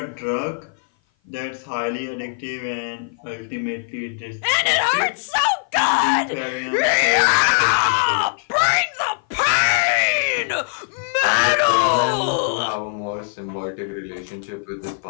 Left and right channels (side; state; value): right; silent; 56 dB below the other